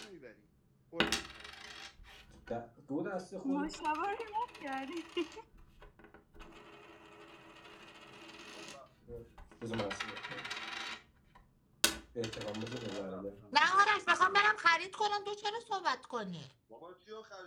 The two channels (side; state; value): both; identical; correlation 1.00